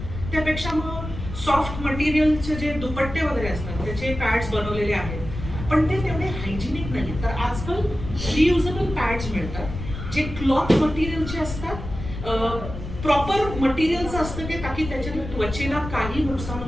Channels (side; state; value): left; noise; rumble, 8 dB below the sound